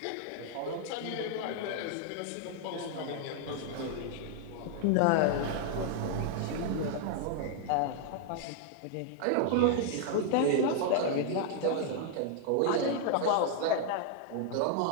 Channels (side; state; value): both; different; correlation 0.00